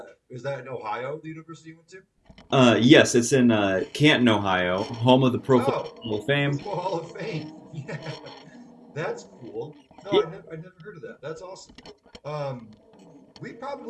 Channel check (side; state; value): both; identical; correlation 1.00